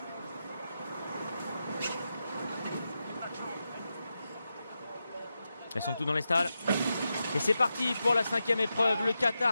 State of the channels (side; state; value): both; inverted; correlation -0.89